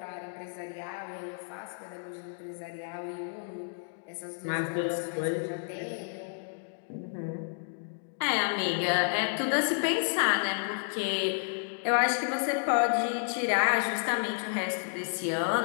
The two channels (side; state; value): right; silent; digital silence